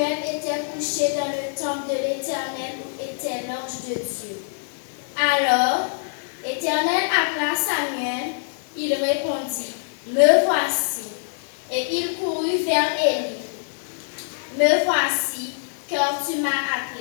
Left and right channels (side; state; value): right; silent; 63 dB below the other